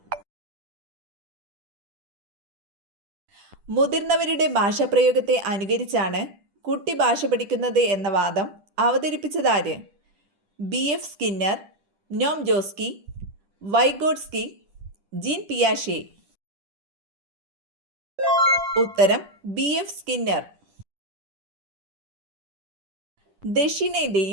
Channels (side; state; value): left; late; 10 ms